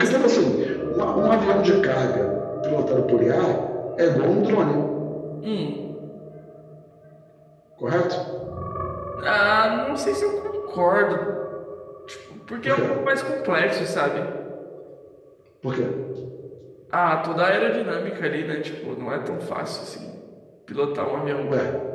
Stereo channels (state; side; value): identical; both; correlation 1.00